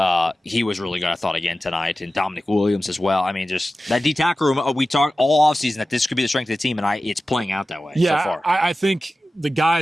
He was really good, I thought, again tonight. And Dominic Williams as well. I mean, just that D tackle room, we talked all offseason that this could be the strength of the team, and it's playing out that way so far. I think the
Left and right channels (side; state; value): both; normal; correlation 0.95